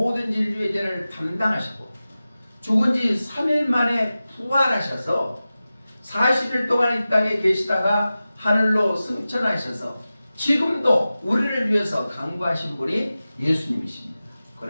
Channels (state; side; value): inverted; both; correlation -0.95